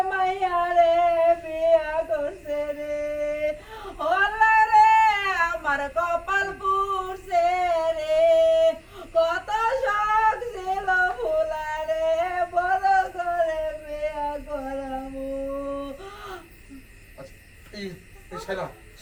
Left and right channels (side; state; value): both; identical; correlation 1.00